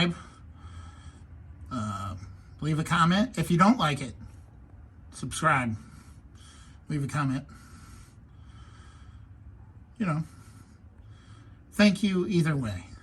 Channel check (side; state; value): both; identical; correlation 1.00